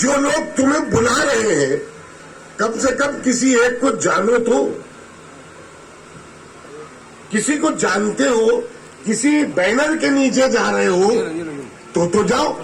लोग तुम्हें बुला रहे हैं, कम से कम किसी एक को जानो तो, किसी को जानते हो, किसी बैनर के नीचे जा रहे हो तो जाओ।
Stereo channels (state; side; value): identical; both; correlation 1.00